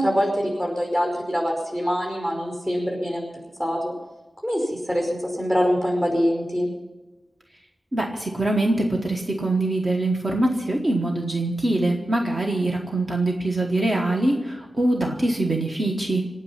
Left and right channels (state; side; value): normal; both; correlation 0.92